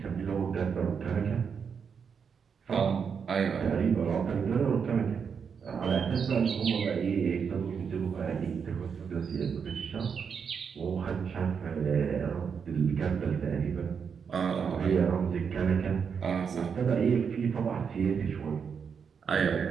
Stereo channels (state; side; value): quieter; left; 6.5 dB